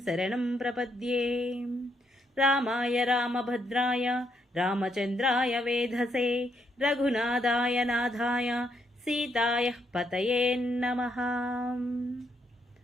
శరణం ప్రపద్యే. రామాయ రామభద్రాయ రామచంద్రాయ వేధసే రఘునాథాయ నాథాయ సీతాయ పతయే నమః.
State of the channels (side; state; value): both; normal; correlation 0.76